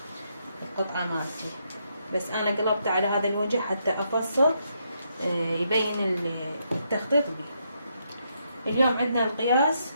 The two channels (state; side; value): inverted; both; correlation -0.78